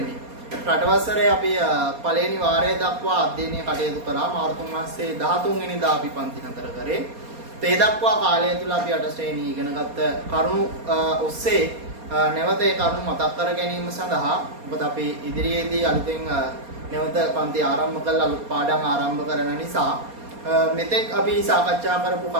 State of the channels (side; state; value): left; late; 4.2 ms